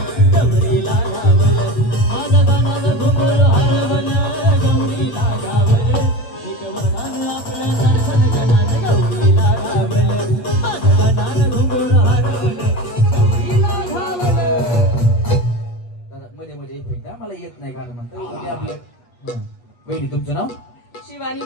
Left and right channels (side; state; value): right; late; 8.2 ms